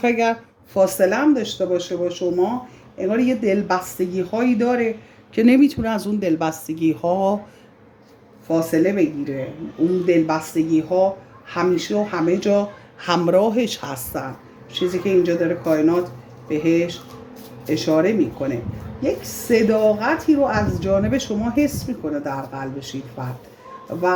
اگر فاصله هم داشته باشه با شما، انگار یه دلبستگی هایی داره که نمیتونه از اون دلبستگی ها فاصله بگیره. اون دلبستگی ها همیشه و همه جا همراهش هستن، چیزی که اینجا داره کائنات بهش اشاره میکنه. یک صداقتی رو از جانب شما حس میکنه در قلبش این فرد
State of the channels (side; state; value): both; identical; correlation 1.00